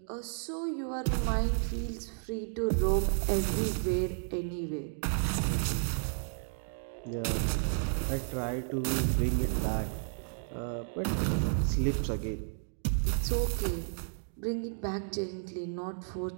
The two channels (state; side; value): silent; left; digital silence